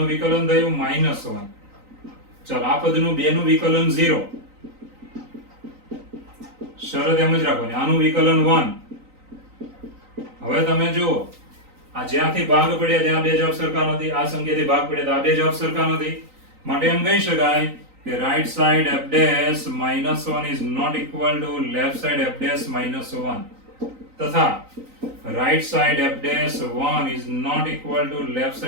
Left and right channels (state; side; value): late; left; 3.9 ms